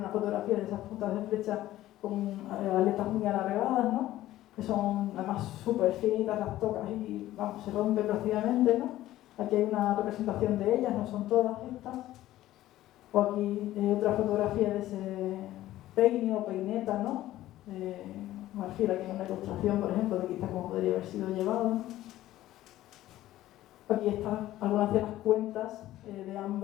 fotografía de esas puntas de flecha con aletas muy alargadas, ¿no? Que son además súper finitas, las tocas y vamos, se rompen prácticamente, ¿no? Aquí hay una representación de ellas, no son todas estas. O aquí otra fotografía de ese peine o peineta, ¿no? Marfil, aquí en una ilustración, por ejemplo, de quizás cómo podría haber sido llevado. Aquí están algunas de las cuentas de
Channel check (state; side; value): quieter; right; 14.7 dB